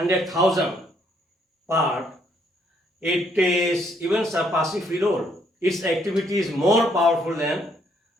part, it is even surpassing phenol. Its activity is more powerful than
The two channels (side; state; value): both; normal; correlation 0.69